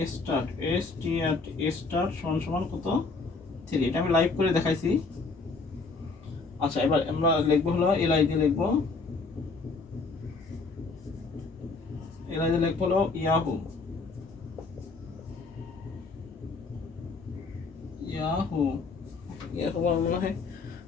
স্টার্ট স্টার্ট সমান সমান কত 3। এটা আমি লাইভ করে দেখাইছি। আচ্ছা এবার আমরা লিখবো হলো এলআই দিয়ে লিখবো, এলআই দিয়ে লিখবো হলো ইয়াহু, ইয়াহু এরকম মনে হয়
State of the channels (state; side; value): quieter; right; 4.1 dB